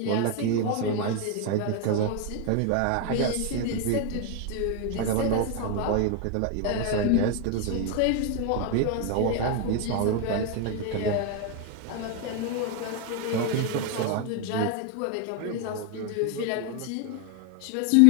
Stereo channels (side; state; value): both; different; correlation 0.01